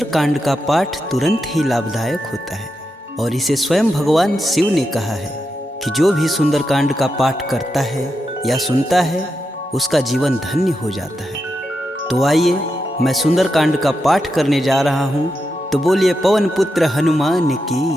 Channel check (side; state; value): both; normal; correlation 0.86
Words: का पाठ तुरंत ही लाभदायक होता है और इसे स्वयं भगवान शिव ने कहा है कि जो भी सुंदरकांड का पाठ करता है या सुनता है उसका जीवन धन्य हो जाता है। तो आइए मैं सुंदरकांड का पाठ करने जा रहा हूँ, तो बोलिए पवन पुत्र हनुमान की